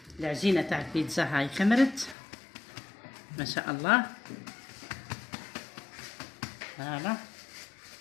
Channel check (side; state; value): right; drops out; at 2.1 s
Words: العجينة تاع البيتزا، هاي خمرت ما شاء الله. هلا